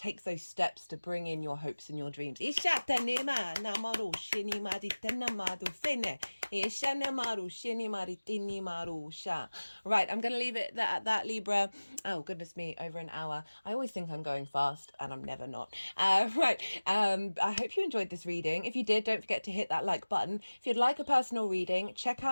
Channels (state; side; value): inverted; both; correlation -1.00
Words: those steps to bring in your hopes and your dreams. Right, I'm going to leave it at that, Libra. Oh, goodness me, over an hour. I always think I'm going fast, and I'm never not. Right, I hope you enjoyed this reading. If you did, don't forget to hit that like button. If you'd like a personal reading, check